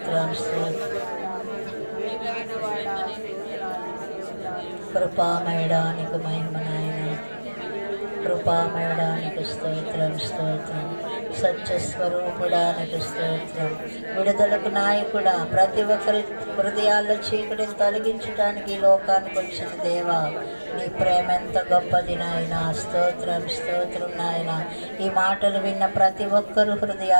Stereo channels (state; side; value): inverted; both; correlation -1.00